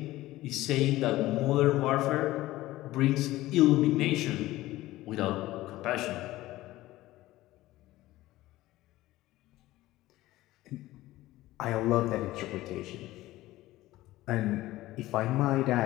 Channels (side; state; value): right; quieter; 16.8 dB